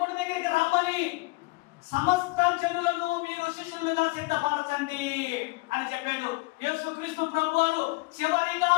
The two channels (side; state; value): right; quieter; 24.5 dB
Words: దగ్గరికి రమ్మని సమస్త జనులను మీరు శిష్యులుగా సిద్ధపరచండి అని చెప్పాడు. యేసుక్రీస్తు ప్రభువారు చివరిగా